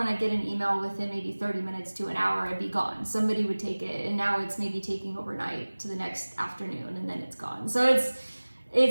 I get an email within maybe 30 minutes to an hour, I'd be gone. Somebody would take it, and now it's maybe taking overnight to the next afternoon, and then it's gone. So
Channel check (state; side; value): inverted; both; correlation -1.00